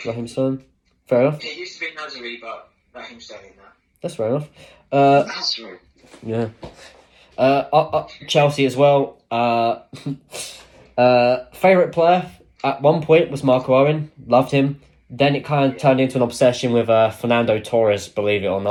Raheem Sterling. Fair enough. It used to be Nazari, but Raheem Sterling now. That's fair enough. Nazari. Yeah. Chelsea as well. Favourite player at one point was Marco Owen. Loved him. Then it kind of turned into an obsession with Fernando Torres, believe it or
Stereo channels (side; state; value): both; identical; correlation 1.00